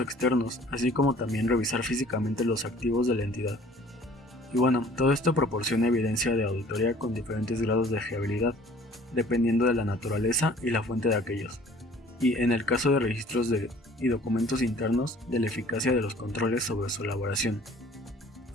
externos, así como también revisar físicamente los activos de la entidad. Y bueno, todo esto proporciona evidencia de auditoría con diferentes grados de fiabilidad, dependiendo de la naturaleza y la fuente de aquellos, y en el caso de registros y documentos internos, de la eficacia de los controles sobre su elaboración.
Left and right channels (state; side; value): normal; both; correlation 0.52